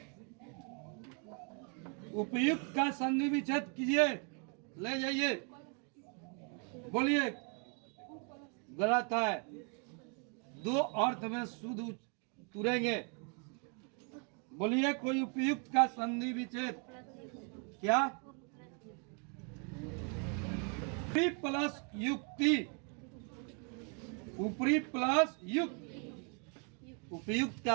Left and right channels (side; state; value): left; quieter; 37.8 dB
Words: उपयुक्त का संधि विच्छेद कीजिए, ले जाइए। बोलिए, गलत है। दो अर्थ में शुद्ध तुरेंगे। बोलिए, कोई उपयुक्त का संधि विच्छेद। क्या? ऊपरी प्लस युक्ति, ऊपरी प्लस युक्त। उपयुक्त